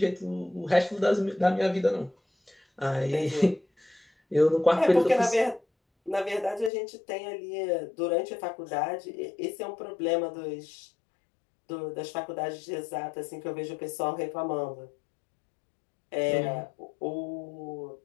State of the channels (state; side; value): drops out; right; at 6.7 s